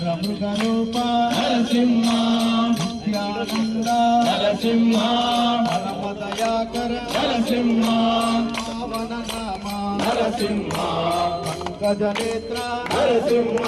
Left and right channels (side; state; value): both; identical; correlation 1.00